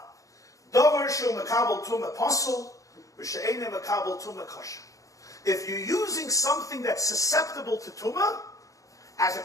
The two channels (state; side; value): late; right; 0.16 ms